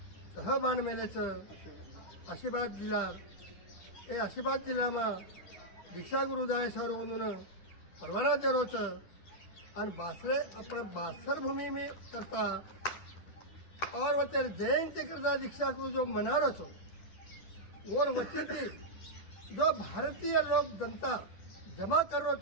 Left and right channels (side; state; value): right; late; 10 ms